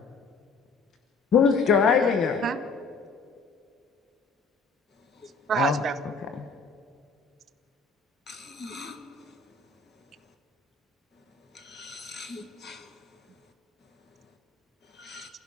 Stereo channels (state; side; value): quieter; right; 4.2 dB